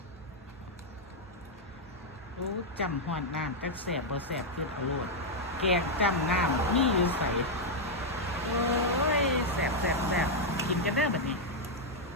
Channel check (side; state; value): both; normal; correlation -0.02